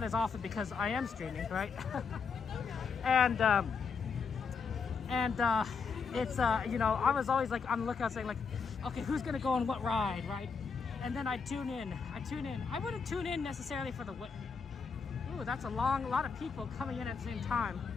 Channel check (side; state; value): right; quieter; 5.5 dB